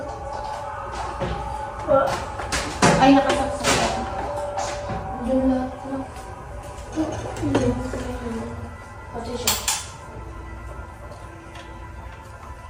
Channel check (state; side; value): identical; both; correlation 1.00